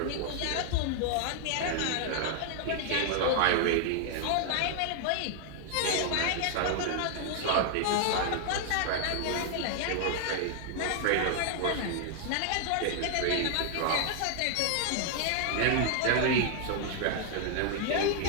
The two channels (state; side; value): different; both; correlation 0.00